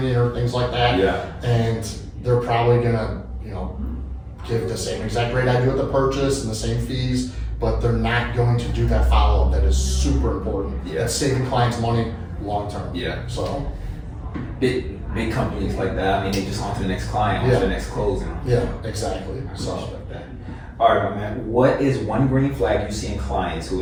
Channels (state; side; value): identical; both; correlation 1.00